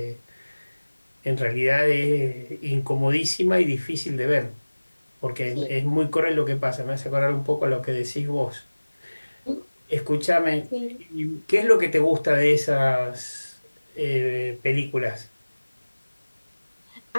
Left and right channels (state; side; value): inverted; both; correlation -1.00